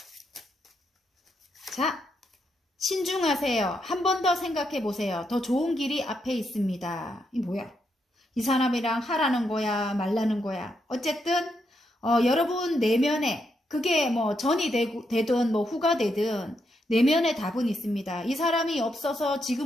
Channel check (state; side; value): normal; both; correlation 0.80